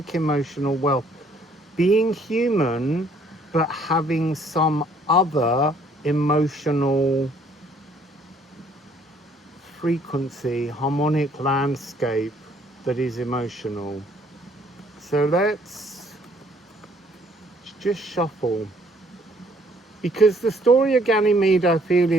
emotional wealth, being human but having some other emotional frequency, harmonic landscape that is emotional. So let's just shuffle, because the story of Ganymede, I feel,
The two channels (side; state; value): both; normal; correlation 0.63